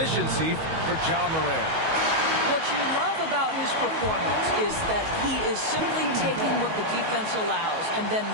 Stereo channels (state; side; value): late; left; 19 ms